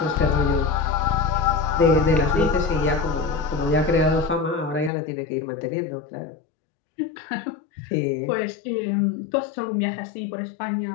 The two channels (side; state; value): right; drops out; at 4.9 s